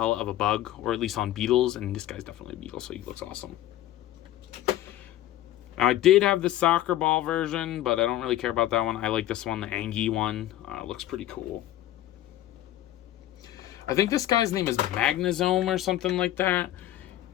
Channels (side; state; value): right; quieter; 13.6 dB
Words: of a bug, or at least on beetles, and this guy's definitely a beetle, so he looks awesome. Now, I did have the soccer ball version, but I don't really care about that one. I like this one, the Angie one. Looks pretty cool. I think this guy's name is Magnazome or something like that.